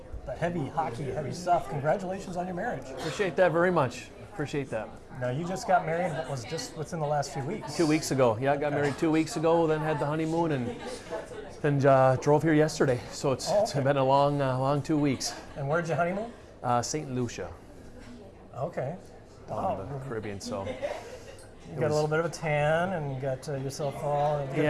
heavy hockey, heavy stuff, congratulations on your marriage. Appreciate that very much. Appreciate that. Now, you just got married, what was just within the last few weeks? 2 weeks ago. Yeah, I got married 2 weeks ago, then had the honeymoon, and then drove here yesterday. So it's been a long 2 weeks. And where'd you honeymoon? St. Lucia, Okay. down in the Caribbean. So You got a little bit of a tan and you got yourself all.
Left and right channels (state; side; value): identical; both; correlation 1.00